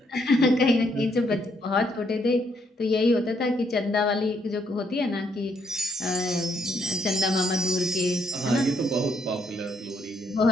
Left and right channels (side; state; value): both; normal; correlation 0.72